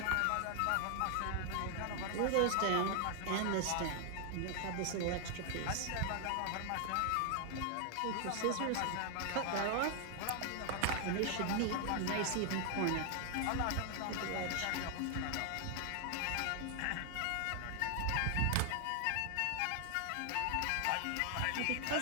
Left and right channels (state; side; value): different; both; correlation 0.00